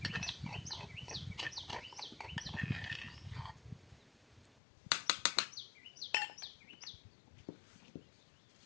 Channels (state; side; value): drops out; right; at 4.6 s